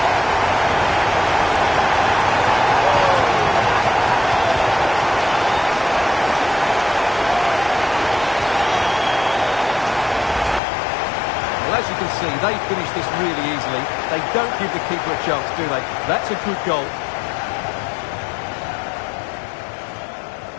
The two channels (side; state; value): right; drops out; at 10.6 s